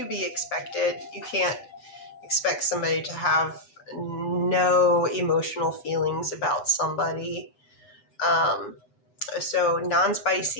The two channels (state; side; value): late; right; 8.1 ms